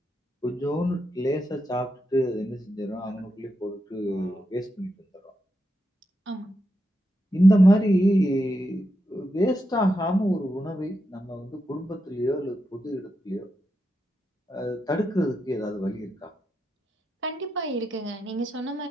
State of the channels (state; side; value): normal; both; correlation 0.85